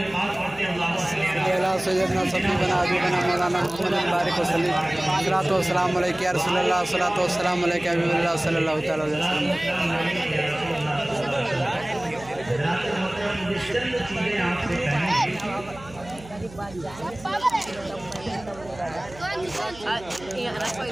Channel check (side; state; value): right; noise; hum, 19 dB below the sound